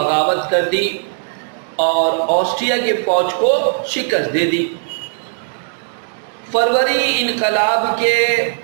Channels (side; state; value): left; silent; 68 dB below the other